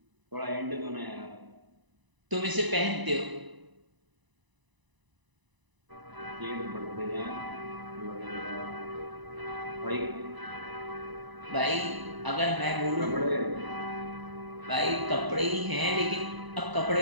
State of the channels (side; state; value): left; late; 1.0 ms